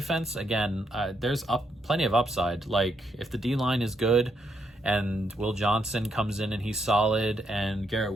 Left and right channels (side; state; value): both; normal; correlation 0.77